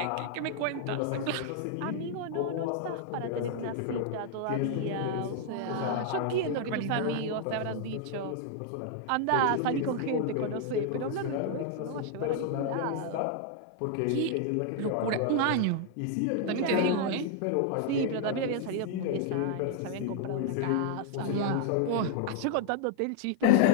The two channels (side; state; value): both; different; correlation 0.00